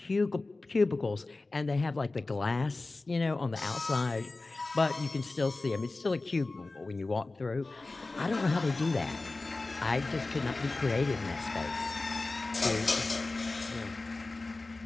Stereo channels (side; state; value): right; quieter; 3.3 dB